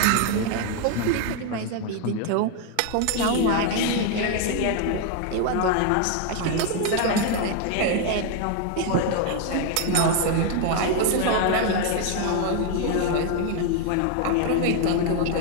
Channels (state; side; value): different; both; correlation 0.01